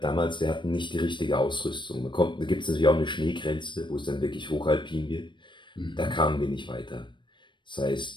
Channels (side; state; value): right; late; 0.23 ms